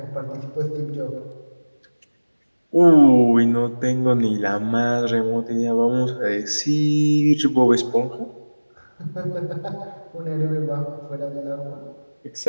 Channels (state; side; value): inverted; both; correlation -1.00